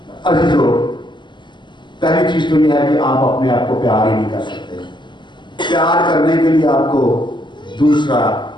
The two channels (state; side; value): late; right; 0.22 ms